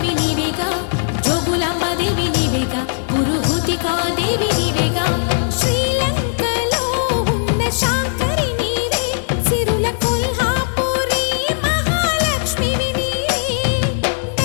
నీవేగా జోగులాంబదేవి నీవేగా పురుహూతికా దేవి నీవేగా శ్రీలంకలో ఉన్న శాంకరి నీవే సిరుల కొల్హాపురి మహాలక్ష్మివి నీవే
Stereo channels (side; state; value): right; silent; 59 dB below the other